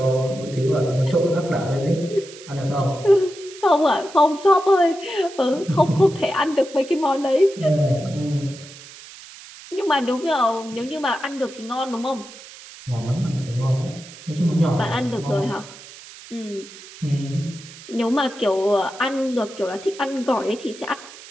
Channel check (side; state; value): right; noise; hiss, 18 dB below the sound